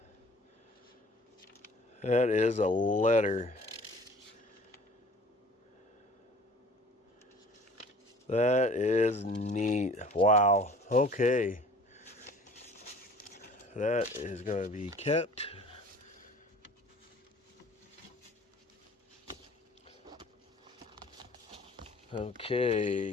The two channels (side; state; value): both; normal; correlation 0.48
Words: That is a letter. That is neat. Wow. Okay. That is going to be kept.